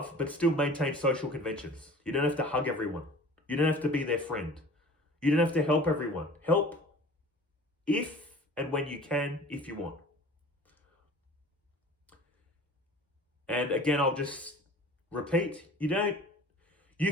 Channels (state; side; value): normal; both; correlation 0.44